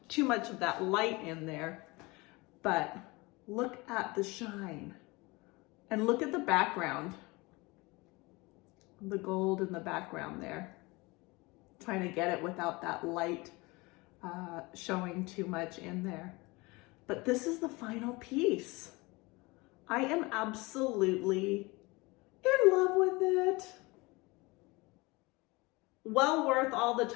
too much of that light in there, but look at the shine and look at the background, the gold in the background there. Trying to get it without that light showing too much in there. But this is the final piece. I am absolutely in love with it. Well worth all the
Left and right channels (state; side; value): quieter; right; 24.2 dB